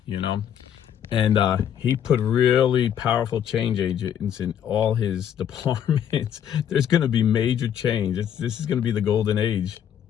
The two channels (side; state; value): right; quieter; 9.5 dB